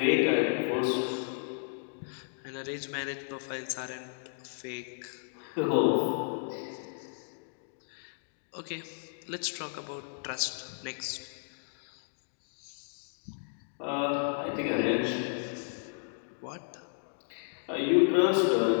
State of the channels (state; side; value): silent; right; digital silence